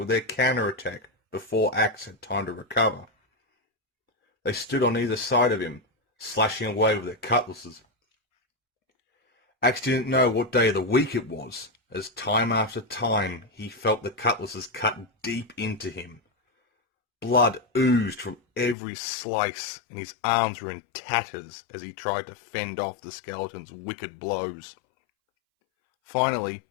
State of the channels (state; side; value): drops out; right; at 18.8 s